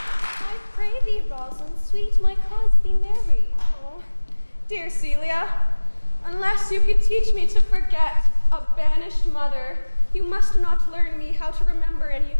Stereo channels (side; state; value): both; inverted; correlation -1.00